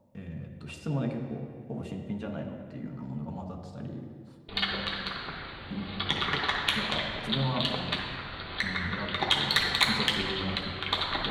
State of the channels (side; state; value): both; identical; correlation 1.00